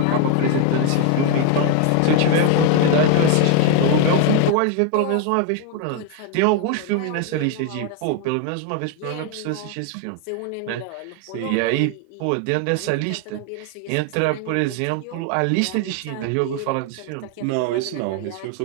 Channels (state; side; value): different; both; correlation 0.01